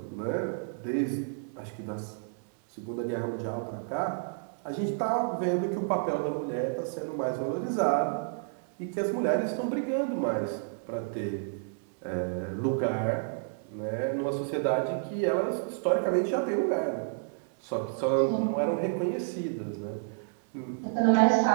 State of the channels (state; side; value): silent; left; digital silence